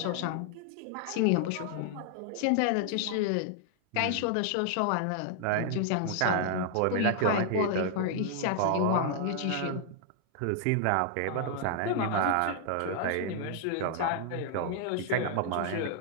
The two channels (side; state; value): both; different; correlation 0.00